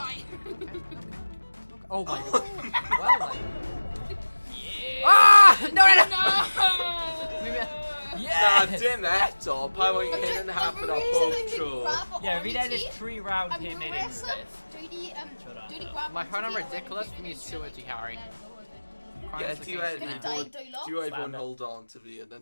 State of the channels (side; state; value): both; inverted; correlation -1.00